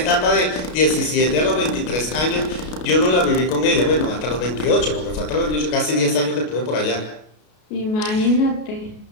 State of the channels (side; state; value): right; late; 33 ms